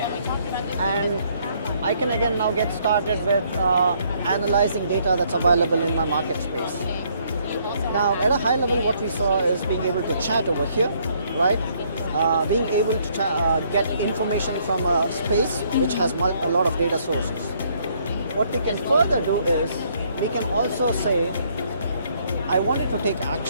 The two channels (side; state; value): both; inverted; correlation -0.67